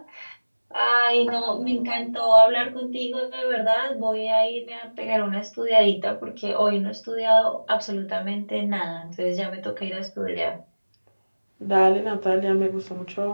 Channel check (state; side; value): inverted; both; correlation -1.00